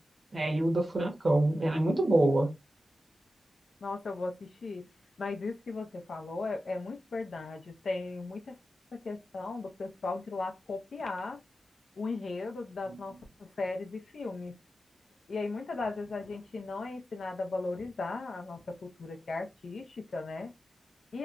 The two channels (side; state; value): both; normal; correlation 0.92